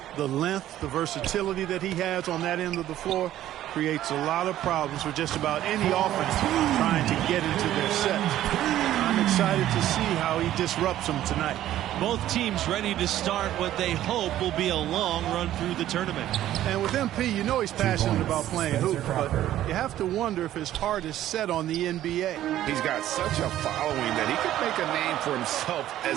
The length, the versatility that he has on that end of the floor creates a lot of problems for just about any offense trying to get into their sets. I'm excited to see how he disrupts them tonight. Both teams ready to start what they hope will be a long run through the tournament. And with MP, you know he's passionate about playing hoop, but you have to wonder if his heart is set on the NBA. He's got such a following that he could make a name for himself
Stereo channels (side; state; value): left; quieter; 13.0 dB